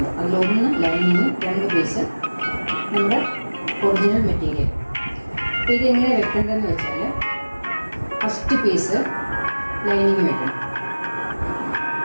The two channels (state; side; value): inverted; both; correlation -1.00